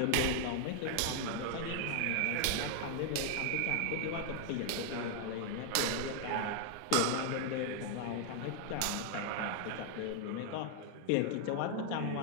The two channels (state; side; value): different; both; correlation 0.00